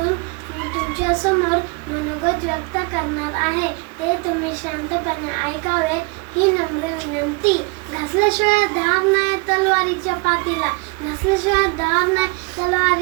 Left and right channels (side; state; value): left; quieter; 30.5 dB